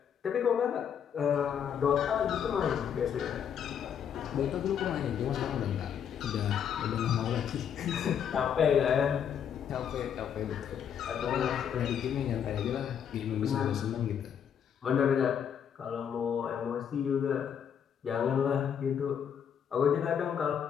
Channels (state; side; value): quieter; right; 8.2 dB